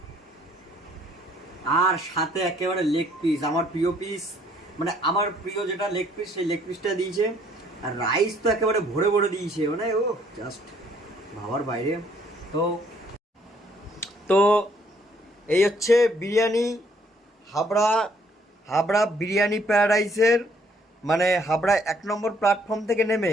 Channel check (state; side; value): normal; both; correlation 0.65